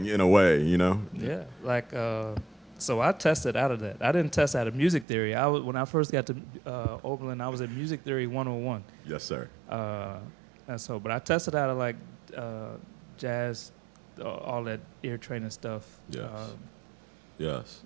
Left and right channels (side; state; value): left; drops out; at 5.1 s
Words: in a way, Yeah, like so I tested out of that. I didn't test out of music theory. When I first got to Oberlin, I was in music theory 101. Yes, sir. And so, but I tested out of like jazz, all that ear training stuff. Yes.